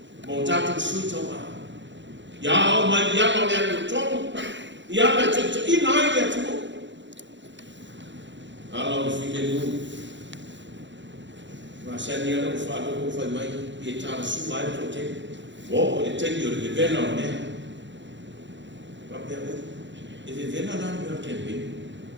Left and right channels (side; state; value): left; late; 0.53 ms